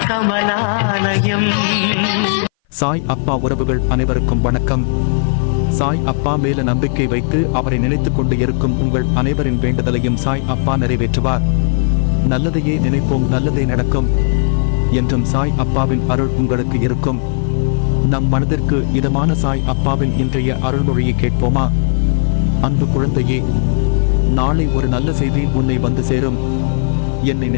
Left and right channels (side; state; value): right; silent; 59 dB below the other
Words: கமலாலயம். சாய் அப்பா உறவுகள் அனைவருக்கும் வணக்கம். சாய் அப்பா மேல நம்பிக்கை வைத்து அவரை நினைத்துக் கொண்டு இருக்கும் உங்கள் அனைவரின் வேண்டுதலையும் சாய் அப்பா நிறைவேற்றுவார். நல்லதையே நினைப்போம், நல்லதே நடக்கும் என்றும் சாய் அப்பாவின் அருள் உங்களுக்கு இருக்கும். நம் மனதிற்கு இதமான சாய் அப்பாவின் இன்றைய அருள்மொழியை கேட்போமா? அன்பு குழந்தையே, நாளை ஒரு நல்ல செய்தி உன்னை வந்து சேரும். என்னை